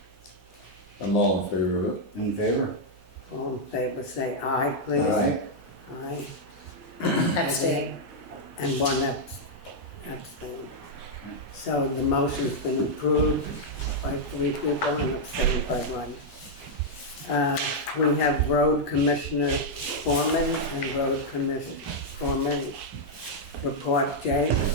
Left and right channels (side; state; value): both; normal; correlation -0.04